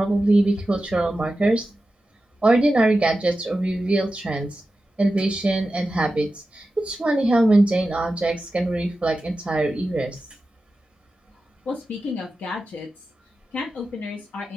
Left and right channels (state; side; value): normal; both; correlation 0.93